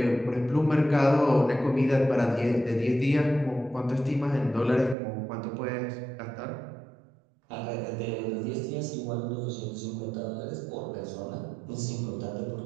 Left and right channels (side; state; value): left; drops out; at 5.0 s